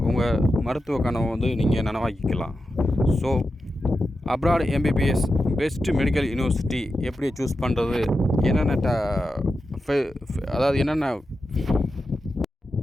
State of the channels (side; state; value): both; normal; correlation 0.90